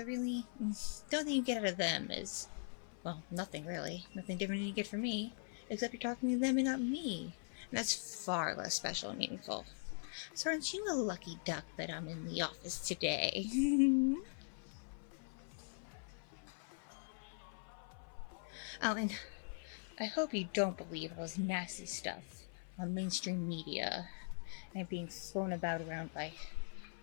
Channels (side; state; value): right; silent; 50 dB below the other